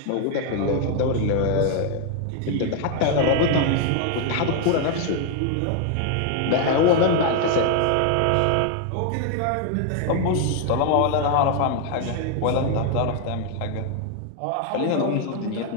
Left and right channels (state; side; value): different; both; correlation 0.01